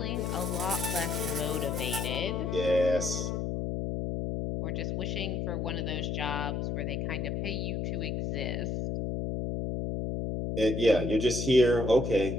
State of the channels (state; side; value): noise; left; hum, 1 dB below the sound